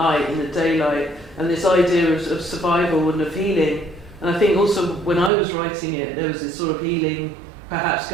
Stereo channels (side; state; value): left; drops out; at 5.3 s